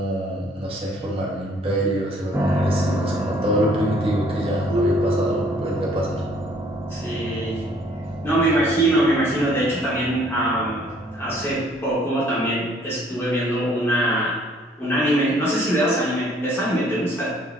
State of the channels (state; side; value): normal; both; correlation 0.60